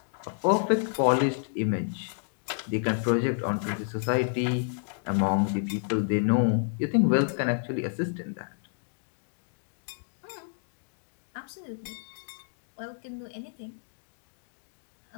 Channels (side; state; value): right; silent; digital silence